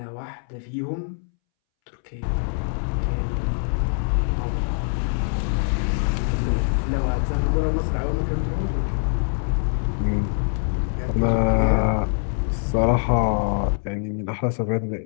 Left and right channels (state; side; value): silent; right; 63 dB below the other